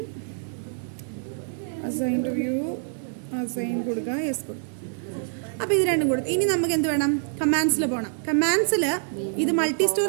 assign to view, assign കൊടുക്കുക, യെസ് കൊടുക്കുക. അപ്പോൾ ഇത് രണ്ടും കൊടുത്തു. ഇനി നമുക്ക് എന്ത് വേണം? കമാൻഡ്സിൽ പോകണം. കമാൻഡ്സിൽ ഇത് മൾട്ടി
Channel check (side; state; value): left; silent; digital silence